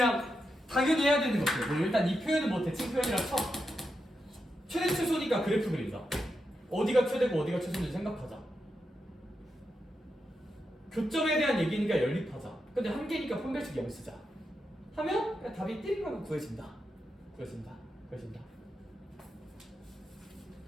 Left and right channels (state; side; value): normal; both; correlation 0.86